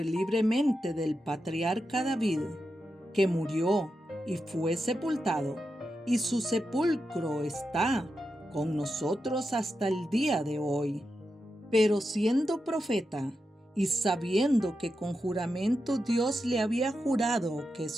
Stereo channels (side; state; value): both; normal; correlation 0.88